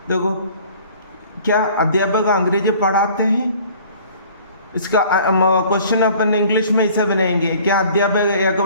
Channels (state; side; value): inverted; both; correlation -0.51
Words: देखो क्या अध्यापक अंग्रेजी पढ़ाते हैं, इसका क्वेश्चन अपन इंग्लिश में ऐसे बनाएंगे। क्या अध्यापक एक